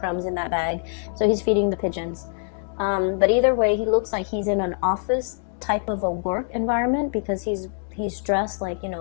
in that bag, so he's feeding the pigeons. But either way, he looks like he's in an office type of a work environment, because he's dressed like,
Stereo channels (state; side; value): silent; right; digital silence